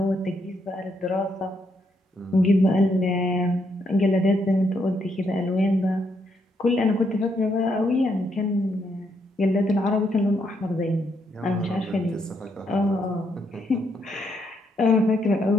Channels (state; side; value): normal; both; correlation 0.76